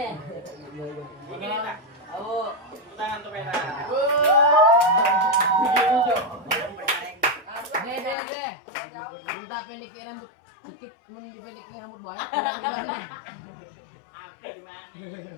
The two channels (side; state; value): right; drops out; at 8.2 s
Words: Ini tak. Oh, Tangan tuh pera. Deh. Minta pendekin rambut dikit, mau dipendekin rambut banyak. Gimana? Apa gimana?